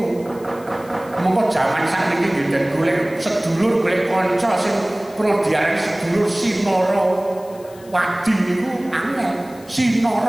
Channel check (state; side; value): noise; left; hiss, 24 dB below the sound